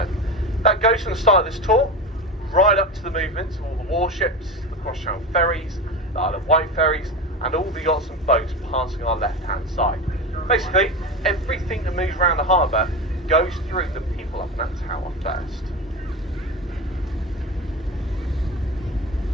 That goes from the start of this tour right up to the movements of all the warships, the cross-channel ferries, the Isle of Wight ferries, and all the yachts and boats passing our left-hand side. Basically, everything that moves around the harbour goes through the people up in that tower first.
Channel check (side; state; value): both; normal; correlation 0.24